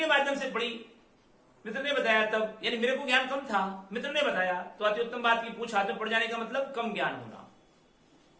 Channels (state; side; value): identical; both; correlation 1.00